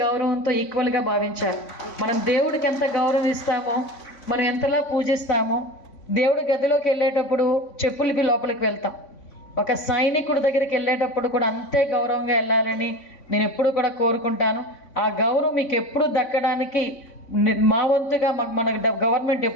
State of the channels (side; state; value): right; late; 3.5 ms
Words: గౌరవంతో ఈక్వల్గా భావించాలి. మనం దేవుడికి ఎంత గౌరవం ఇస్తామో, మనం ఎంతలా పూజిస్తామో, దేవుడి గదిలోకి వెళ్ళేటప్పుడు చెప్పులకి లోపలికి వెళ్తాం, ఒక సైనికుడి దగ్గరికి వెళ్ళేటప్పుడు కూడా అంతే గౌరవంగా వెళ్ళాలని నేను ఎప్పుడు కూడా కోరుకుంటాను. ఆ గౌరవం మీకు ఎప్పుడు దక్కడానికి మా వంతుగా మన గవర్నమెంట్